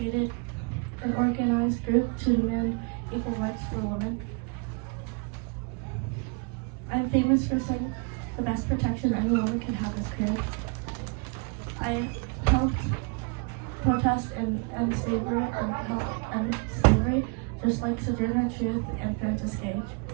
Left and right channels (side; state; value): left; quieter; 34.2 dB